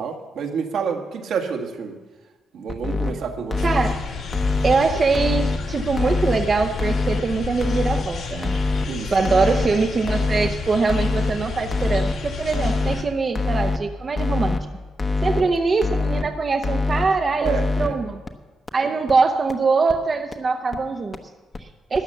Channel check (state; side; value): normal; both; correlation 0.87